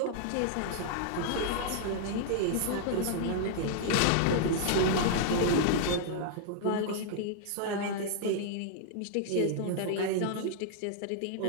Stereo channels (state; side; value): different; both; correlation -0.01